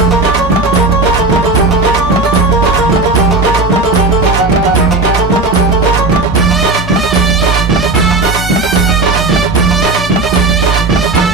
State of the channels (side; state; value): left; quieter; 3.4 dB